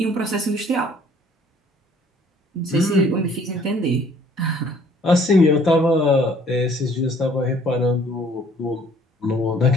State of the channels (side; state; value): both; normal; correlation 0.58